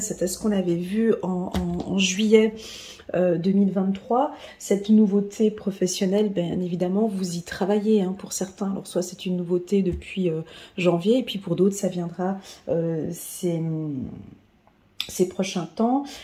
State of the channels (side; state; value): both; identical; correlation 1.00